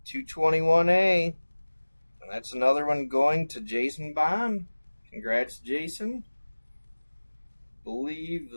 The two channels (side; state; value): both; inverted; correlation -1.00